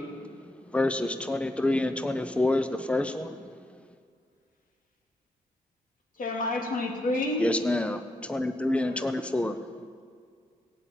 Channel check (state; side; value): normal; both; correlation 0.81